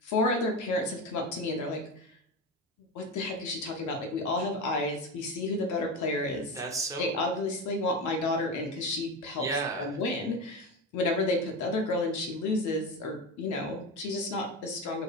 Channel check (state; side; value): normal; both; correlation 0.21